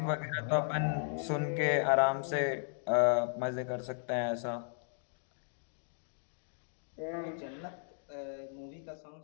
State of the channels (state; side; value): silent; right; digital silence